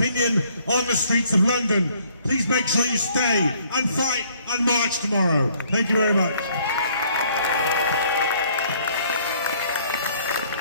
on the streets of London. Please make sure you stay and fight and march tomorrow. Thank you very much.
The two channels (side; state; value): both; inverted; correlation -0.62